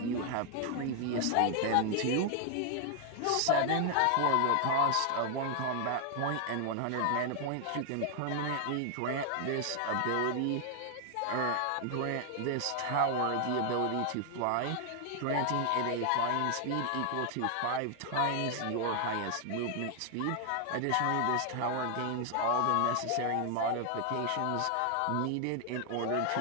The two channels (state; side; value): different; both; correlation 0.00